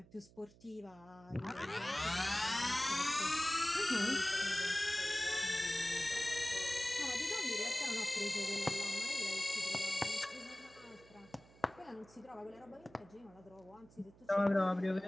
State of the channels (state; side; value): noise; right; hum, 24 dB below the sound